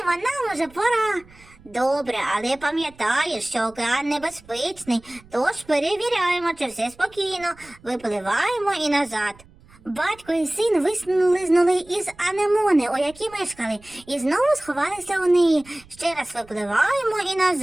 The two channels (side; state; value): right; noise; rumble, 25 dB below the sound